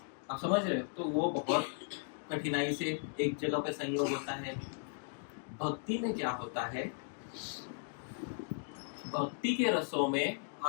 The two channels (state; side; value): silent; right; digital silence